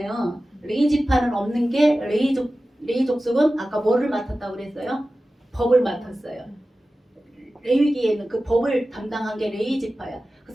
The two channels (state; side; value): normal; both; correlation 0.95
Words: 레위 지파는 없는 게 레위 족속은 아까 뭐를 맡았다고 그랬어요? 법을 맡았어요. 레위기에는 그 법을 담당한 게 레위 지파야.